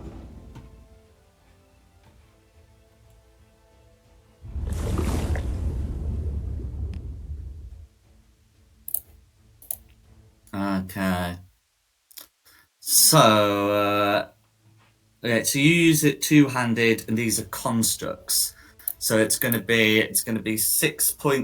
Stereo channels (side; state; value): both; identical; correlation 1.00